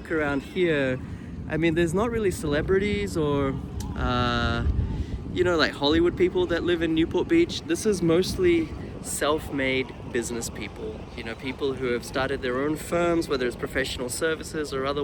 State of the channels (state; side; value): identical; both; correlation 1.00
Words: around here, I mean, there's not really celebrities or, like Hollywood people that live in Newport Beach. This is mostly self-made business people, people who have started their own firms, whether it's professional services or